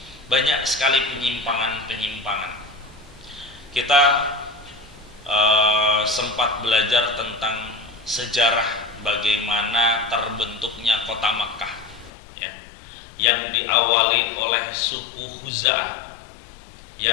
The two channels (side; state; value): right; drops out; at 12.1 s